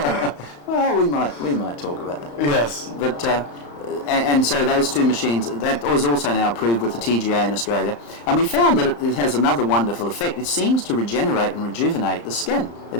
Well, we might talk about that. Yes. But and so those 2 machines, that was also now approved with the TGA in Australia, and we found that it has another wonderful effect. It seems to regenerate and rejuvenate the skin. It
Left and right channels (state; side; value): late; right; 35 ms